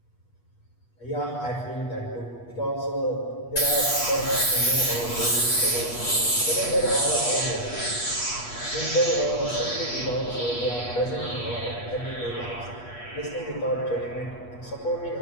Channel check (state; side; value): late; right; 8.3 ms